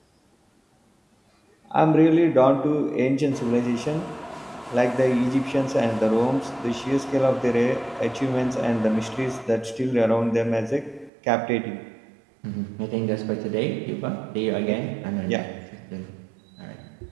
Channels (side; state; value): left; drops out; at 11.1 s